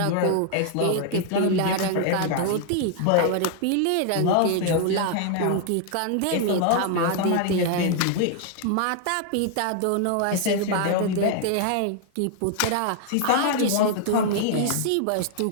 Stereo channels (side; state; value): both; different; correlation 0.00